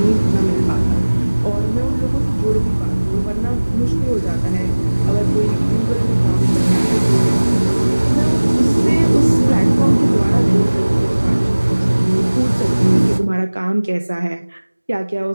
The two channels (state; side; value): inverted; both; correlation -1.00